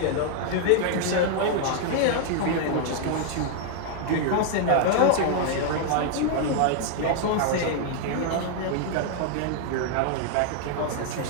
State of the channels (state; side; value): different; both; correlation 0.00